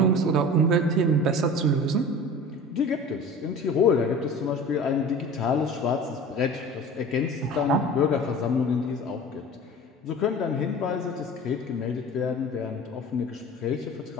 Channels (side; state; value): both; normal; correlation 0.39